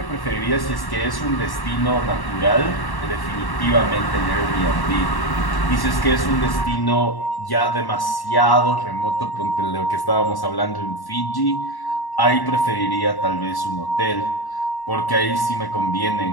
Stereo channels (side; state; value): right; late; 1.1 ms